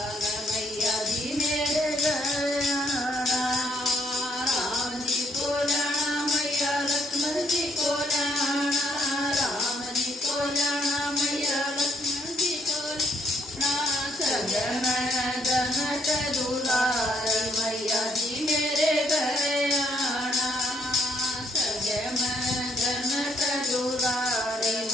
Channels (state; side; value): normal; both; correlation 0.69